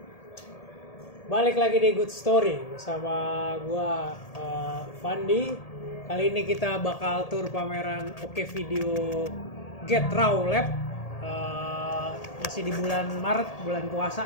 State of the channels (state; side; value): late; right; 1.8 ms